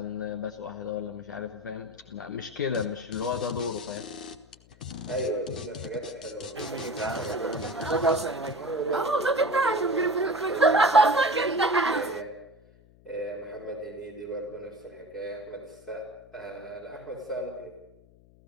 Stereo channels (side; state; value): left; noise; hum, 26 dB below the sound